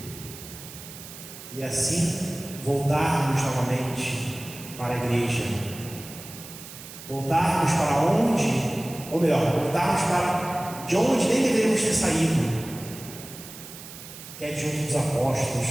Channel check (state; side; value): noise; right; hiss, 14 dB below the sound